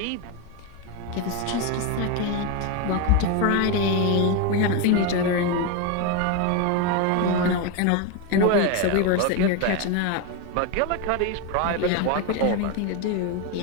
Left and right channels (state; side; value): different; both; correlation 0.03